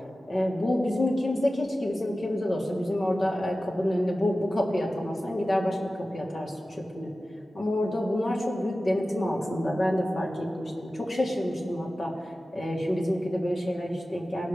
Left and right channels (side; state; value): both; normal; correlation 0.95